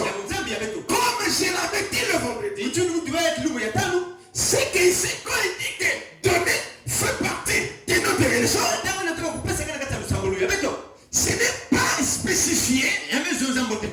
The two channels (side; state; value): both; identical; correlation 1.00